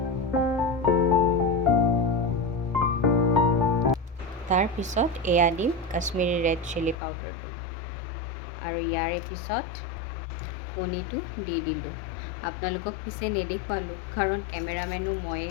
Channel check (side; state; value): right; drops out; at 7.0 s